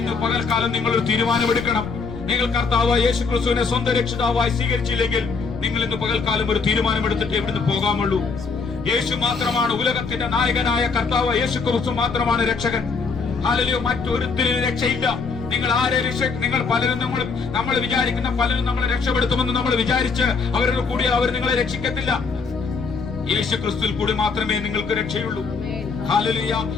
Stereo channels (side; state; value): right; quieter; 4.8 dB